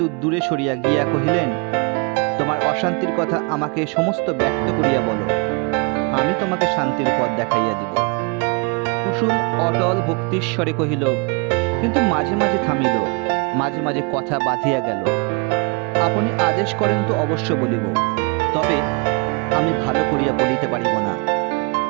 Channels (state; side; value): quieter; left; 31.9 dB